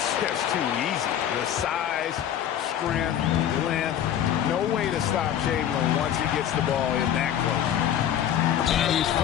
just too easy. The size, strength, length, no way to stop Chamberlain once he gets the ball in that close. And he's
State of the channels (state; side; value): quieter; right; 10.3 dB